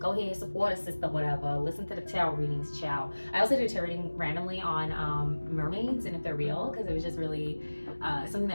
ahead, support a sister, whatever. Listen to the tarot readings, child. I also do tarot reading randomly on mermaids and if they're real, because it was just really something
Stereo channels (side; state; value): both; inverted; correlation -1.00